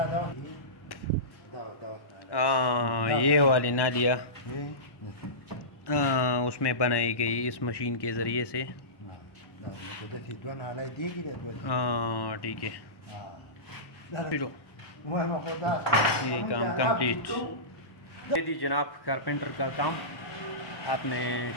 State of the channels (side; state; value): right; late; 1.1 ms